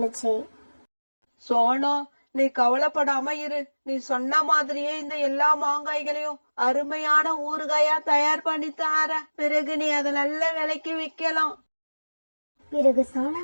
சோனா, நீ கவலைப்படாம இரு. நீ சொன்ன மாதிரியே இந்த எல்லா மாங்காய்களையும் அருமையான ஊறுகாயா தயார் பண்ணி தார. பிறகு நீ அதை நல்ல விலைக்கு விற்கலாம். பிறகு சோனா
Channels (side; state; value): both; inverted; correlation -1.00